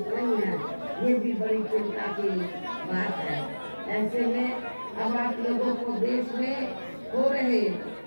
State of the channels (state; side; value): inverted; both; correlation -1.00